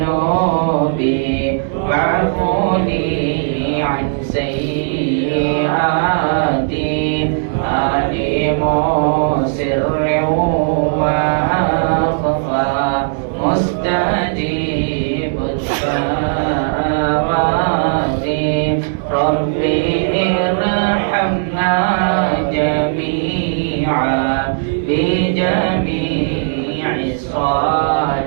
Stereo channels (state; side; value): silent; left; digital silence